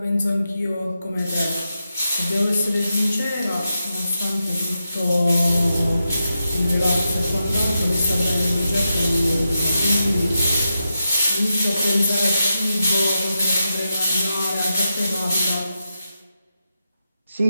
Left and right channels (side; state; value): both; inverted; correlation -0.87